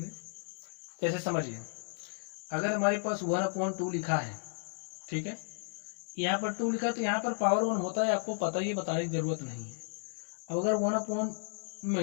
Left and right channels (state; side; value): silent; right; digital silence